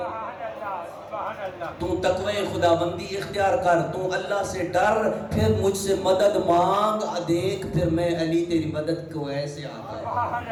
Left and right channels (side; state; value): both; identical; correlation 1.00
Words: تو تقوی خدا بندی اختیار کر، تو اللہ سے ڈر، پھر مجھ سے مدد مانگ، دیکھ پھر میں علی تیری مدد کو ایسے آتا ہے۔